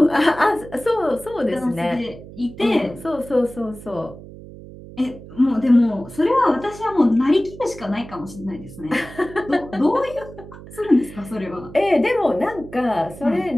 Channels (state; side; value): noise; right; hum, 16 dB below the sound